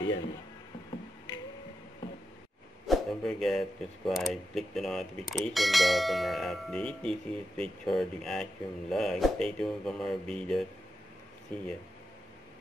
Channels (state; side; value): normal; both; correlation 0.88